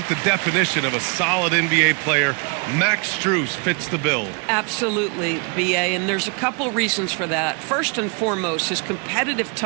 the definition of a solid NBA player, Max Strus fits the bill. Absolutely, B.A., and there's a couple reasons for that. First and foremost, his competitive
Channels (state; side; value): quieter; left; 34.8 dB